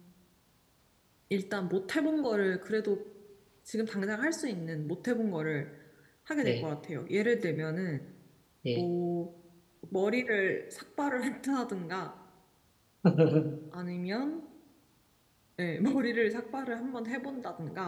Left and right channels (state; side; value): identical; both; correlation 1.00